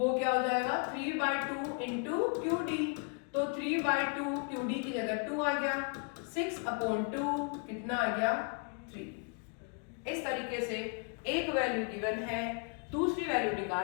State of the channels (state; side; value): quieter; right; 39.4 dB